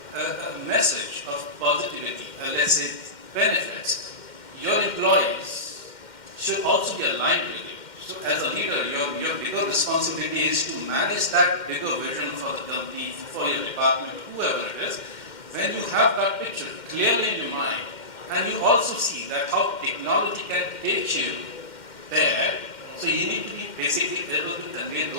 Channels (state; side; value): late; right; 2.1 ms